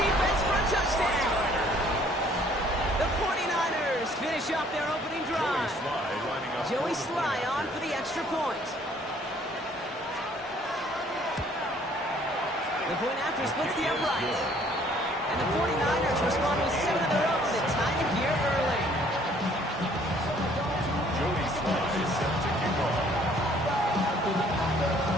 defense for a touchdown. The 49ers finish up their opening drive. Joey Sly on for the extra point. The point after splits the upright. And the 49ers respond with 7 of their own to tie it here early. Joey Sly is set to kick off. We've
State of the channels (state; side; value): normal; both; correlation 0.60